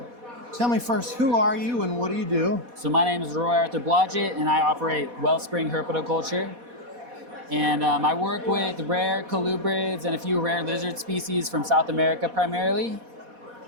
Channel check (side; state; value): left; late; 4.1 ms